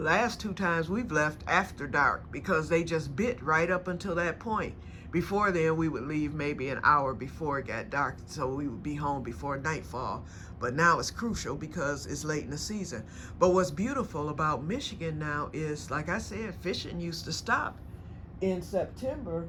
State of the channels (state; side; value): identical; both; correlation 1.00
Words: 2 times we've left after dark because they just bit right up until that point. Before then, we would leave maybe an hour before it got dark, so we would be home before nightfall. But now it's crucial because it's late in the season. But what's beautiful about Michigan now is, like I said, fishing used to stop in September.